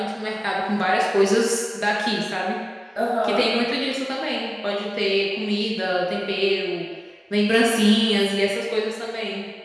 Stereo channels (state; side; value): identical; both; correlation 1.00